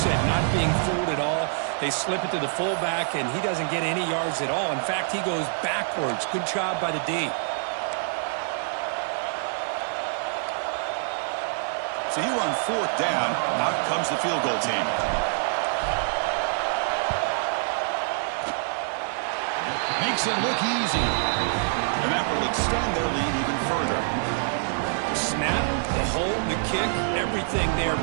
not being fooled at all. They slip it to the fullback, and he doesn't get any yards at all. In fact, he goes backwards. Good job by the D. So here on fourth down, out comes the field goal team. Makes it look easy. And that will extend their lead even further. Snap, the hold, the kick, everything there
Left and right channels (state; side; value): silent; left; 61 dB below the other